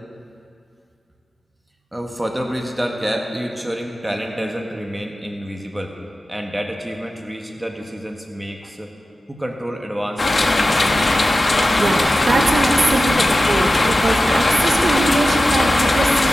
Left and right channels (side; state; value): both; normal; correlation 0.94